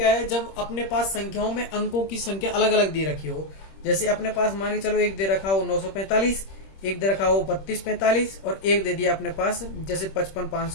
है, जब अपने पास संख्याओं में अंकों की संख्या अलग अलग दे रखी हो, जैसे अपने पास मान के चलो एक दे रखा हो 945, एक दे रखा हो 3245 और एक दे दिया अपने पास जैसे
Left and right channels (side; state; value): right; late; 26 ms